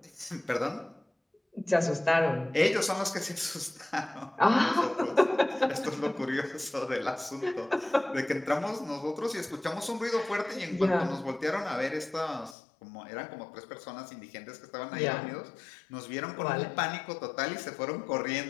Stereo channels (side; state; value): right; drops out; at 12.6 s